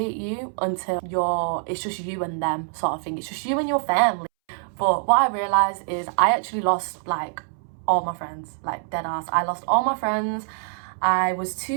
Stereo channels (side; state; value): left; silent; 62 dB below the other